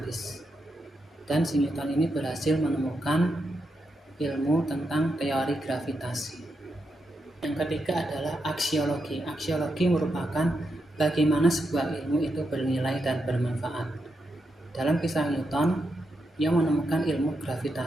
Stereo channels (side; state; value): both; normal; correlation 0.84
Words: Dan si Newton ini berhasil menemukan ilmu tentang teori gravitasi. Yang ketiga adalah aksiologi. Aksiologi merupakan bagaimana sebuah ilmu itu bernilai dan bermanfaat. Dalam kisah Newton, ia menemukan ilmu